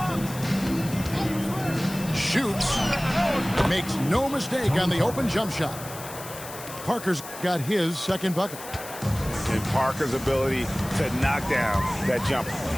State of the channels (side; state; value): left; noise; hiss, 13 dB below the sound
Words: Shoots. Makes no mistake on the open jump shot. Parker's got his second bucket. And Parker's ability to knock down that jumper.